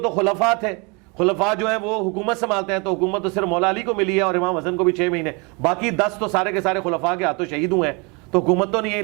خلفاء تھے, خلفاء جو ہیں وہ حکومت سنبھالتے ہیں, تو حکومت تو صرف مولا علی کو ملی ہے اور امام حسن کو بھی 6 مہینے, باقی 10 تو سارے کے سارے خلفاء کے ہاتھوں شہید ہوئے ہیں, تو حکومت تو نہیں ہے,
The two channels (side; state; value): left; quieter; 30.5 dB